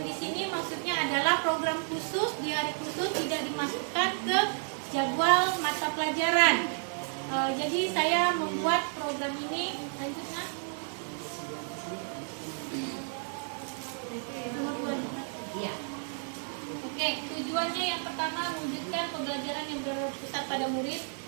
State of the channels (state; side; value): silent; left; 56 dB below the other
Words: di sini maksudnya adalah program khusus di hari khusus, tidak dimasukkan ke jadwal mata pelajaran. Jadi saya membuat program ini lanjutnya. Oke, tujuannya yang pertama mewujudkan pembelajaran yang berpusat pada murid.